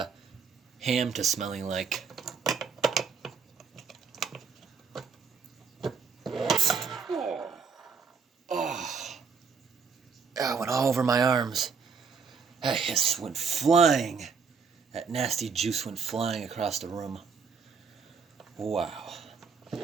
ham to smelling like. Oh, it went all over my arms. That hiss went flying. That nasty juice went flying across the room. Wow.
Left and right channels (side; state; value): left; quieter; 5.7 dB